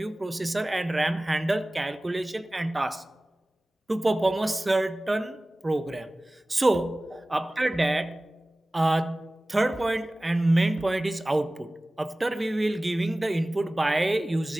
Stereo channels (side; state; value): both; normal; correlation 0.98